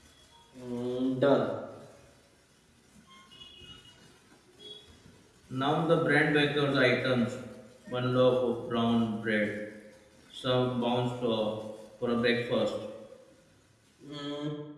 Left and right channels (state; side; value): identical; both; correlation 1.00